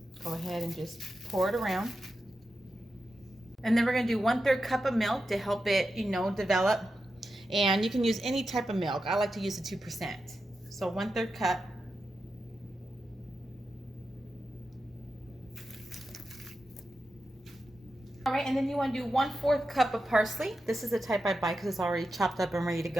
Go ahead and just pour it around. And then we're gonna do 1/3 cup of milk to help it, develop. And you can use any type of milk. I like to use the 2%. So 1/3 cup. All right, and then you want to do 1/4 cup of parsley. This is the type I buy because it's already chopped up and ready to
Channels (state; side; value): normal; both; correlation 0.89